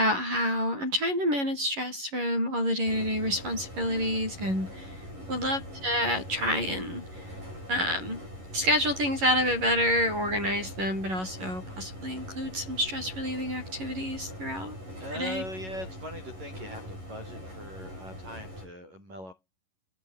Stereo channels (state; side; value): late; left; 11 ms